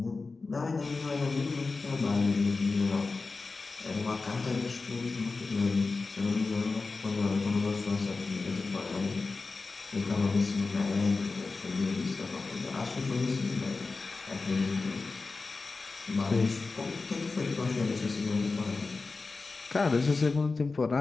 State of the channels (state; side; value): quieter; right; 3.9 dB